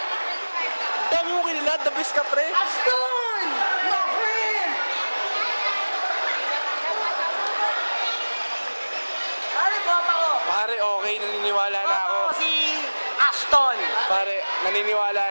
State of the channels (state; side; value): inverted; both; correlation -1.00